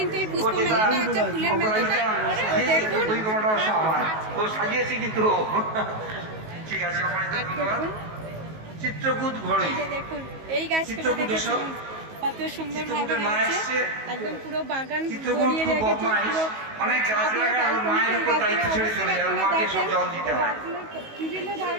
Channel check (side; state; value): left; late; 19 ms